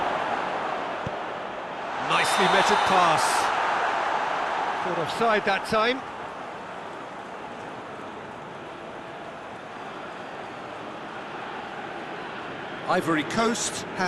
Nicely measured pass. Caught offside that time. Ivory Coast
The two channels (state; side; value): identical; both; correlation 1.00